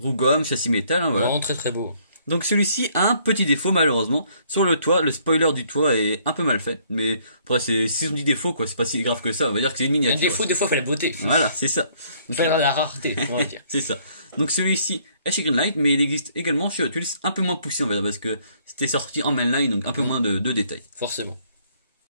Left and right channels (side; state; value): both; inverted; correlation -0.64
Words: gomme, châssis métal, hein, voilà. Vraiment très très beau. Donc celui-ci a un petit défaut malheureusement. Sur le toit, le spoiler du toit est un peu mal fait. Mais après, si on dit défaut, quoi, c'est pas si grave que ça. On va dire que c'est une miniature. Un défaut, des fois, fait la beauté. Voilà, c'est ça. Fait la rareté, on va dire. C'est ça. Donc celui-ci est chez Greenlight, mais il existe également chez Hot Wheels, un peu moins poussé on va dire, parce que c'était sorti en mainline, donc un peu moins de détails. Forcément.